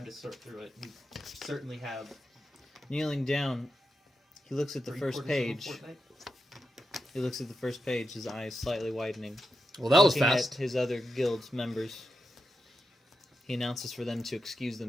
to sort through it, you certainly have. Kneeling down, he looks at the first 3/4 of a page. fortnight. He looks at the first page, his eyes slightly widening. Well, that was Looking fast. at his other guild members, he announces for them to excuse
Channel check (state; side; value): normal; both; correlation 0.88